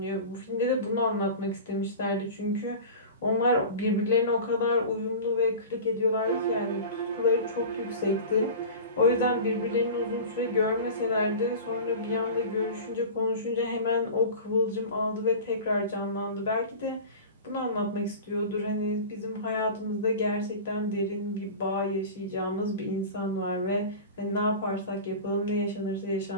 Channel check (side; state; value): both; inverted; correlation -0.34